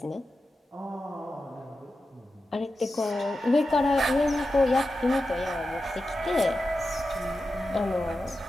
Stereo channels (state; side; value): normal; both; correlation 0.91